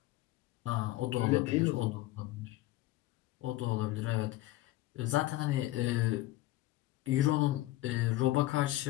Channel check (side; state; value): right; quieter; 17.0 dB